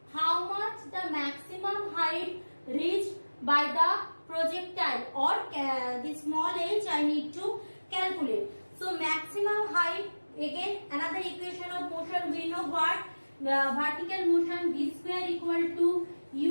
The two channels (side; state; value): both; inverted; correlation -1.00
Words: how much the maximum height reached by the projectile, or the small h I need to calculate. So maximum height, again another equation of motion, we know what? Vertical motion v square equal to